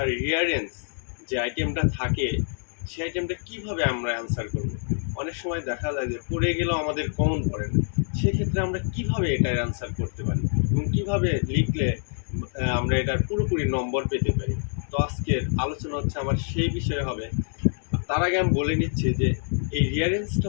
রিয়ারেন্স যে আইটেমটা থাকে সেই আইটেমটা কিভাবে আমরা অ্যান্সার করব। অনেক সময় দেখা যায় যে পড়ে গেলেও আমাদের কমন পড়ে না, সেক্ষেত্রে আমরা কিভাবে এটার অ্যান্সার করতে পারি এবং কিভাবে লিখলে আমরা এটার পুরোপুরি নম্বর পেতে পারি। তো আজকের আলোচনা হচ্ছে আমার সেই বিষয়ে হবে। তার আগে আমি বলে নিচ্ছি যে এই রিয়ারেন্সটা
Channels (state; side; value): silent; right; 61 dB below the other